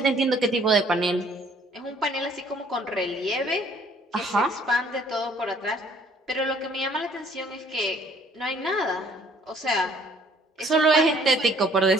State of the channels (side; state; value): both; normal; correlation 0.59